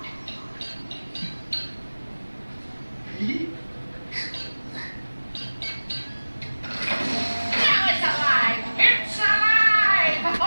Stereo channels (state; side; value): inverted; both; correlation -1.00